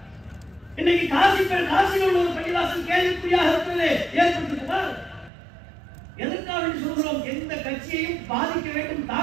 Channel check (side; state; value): left; drops out; at 5.3 s